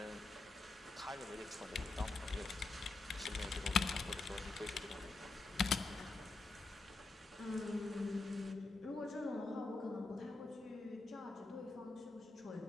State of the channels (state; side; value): quieter; right; 3.4 dB